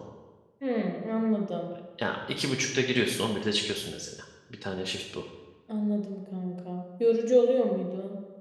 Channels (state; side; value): identical; both; correlation 1.00